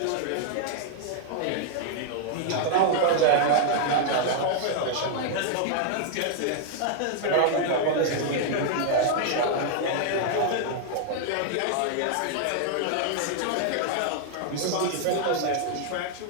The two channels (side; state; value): both; different; correlation -0.01